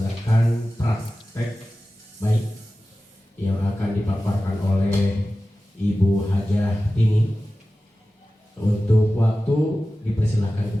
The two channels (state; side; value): normal; both; correlation 0.95